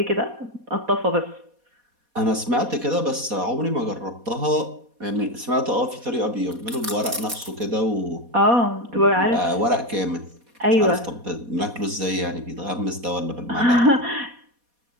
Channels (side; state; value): left; late; 4.2 ms